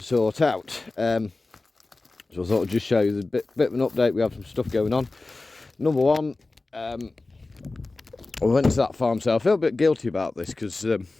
sort out. So I thought I'd just show you the bit of an update. We have some stuff going on. Number one, I went to that farm sale. I feel a bit guilty about this because I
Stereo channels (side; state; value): right; quieter; 3.3 dB